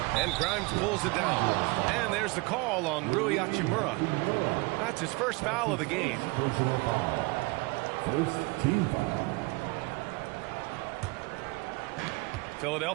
And Grimes pulls it down. And there's the call on Rui Hachimura. That's his first foul of the game. Personal foul. First team foul.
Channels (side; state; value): left; quieter; 26.1 dB